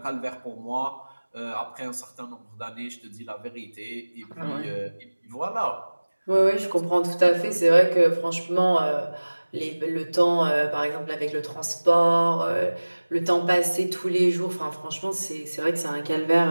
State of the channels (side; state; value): both; inverted; correlation -1.00